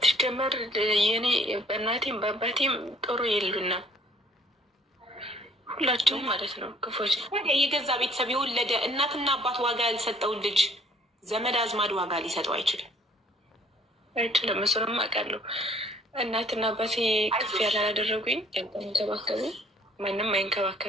የኔ በእናቴም በአባቴም ጥሩ የሉና ሁላቸውም ማለት ነው ክፎች። የገዛ ቤተሰብ የወለደ እናትና አባት ዋጋ ያልሰጠውን ልጅ ዘመድ አዝማድ ዋጋ ሊሰጠው አይችልም። እሱንም አውቃለሁ። እናትና አባቴ ከፍ ያላደረጉኝ ያንከባከቡ ማንም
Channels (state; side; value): normal; both; correlation 0.59